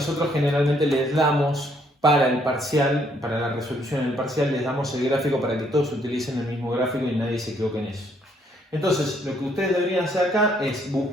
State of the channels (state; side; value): normal; both; correlation 0.68